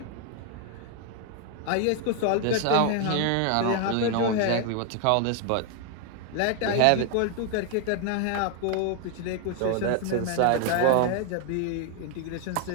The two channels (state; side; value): different; both; correlation 0.00